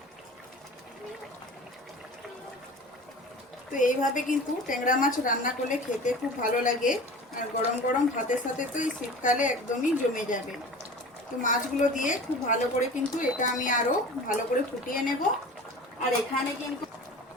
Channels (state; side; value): normal; both; correlation 0.38